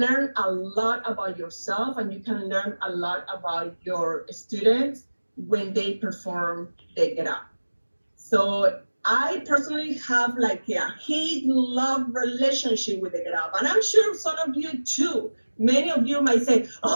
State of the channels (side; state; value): both; inverted; correlation -1.00